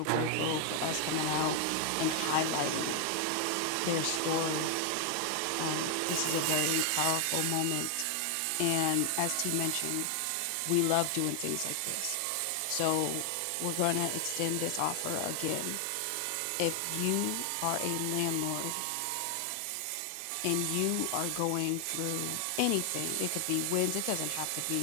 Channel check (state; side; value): different; both; correlation 0.00